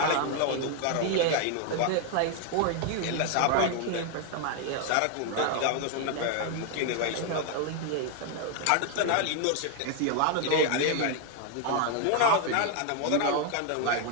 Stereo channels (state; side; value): different; both; correlation 0.00